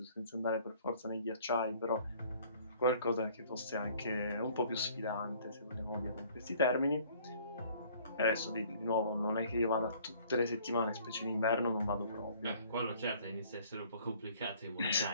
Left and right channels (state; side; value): inverted; both; correlation -0.56